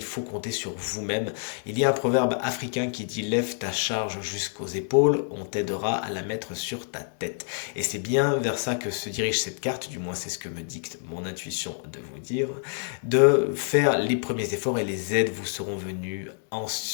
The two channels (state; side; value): silent; right; 60 dB below the other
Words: faut compter sur vous-même. Il y a un proverbe africain qui dit lève ta charge jusqu'aux épaules, on t'aidera à la mettre sur ta tête. Et c'est bien vers ça que se dirige cette carte, du moins c'est ce que me dicte mon intuition de vous dire, de faire les premiers efforts et les aides vous seront venues